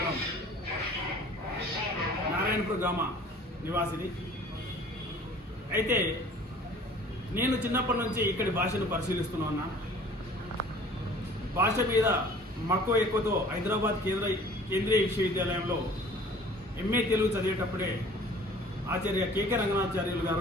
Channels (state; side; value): normal; both; correlation 0.49